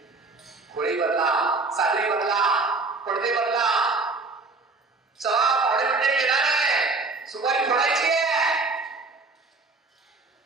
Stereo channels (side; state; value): left; quieter; 3.7 dB